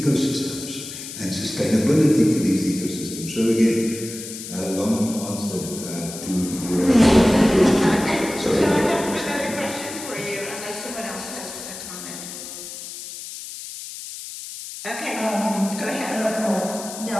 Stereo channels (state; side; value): noise; left; hiss, 11 dB below the sound